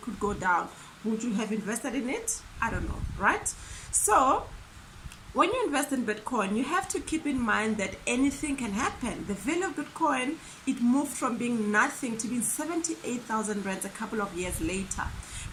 could go down. Would you have invested in it? I don't know, right? So when you invest in Bitcoin, you have to keep in mind that anything can happen. The value of Bitcoin, it moved from being nothing to being 78,000 rands a couple of years later.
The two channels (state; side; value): identical; both; correlation 1.00